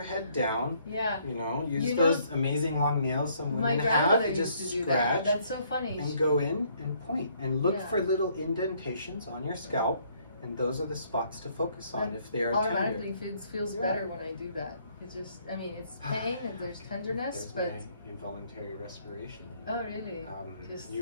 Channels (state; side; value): inverted; both; correlation -0.66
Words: head down. Yeah. Use those amazing long nails some women have. Just scratch. That's so funny. And go in and point and look for little indentations on your scalp, and those are the spots to focus on if they are automatically tender. feels better when I do that. It's just, it's pain and there's tenderness, but involuntary respiration. Oh, really? Just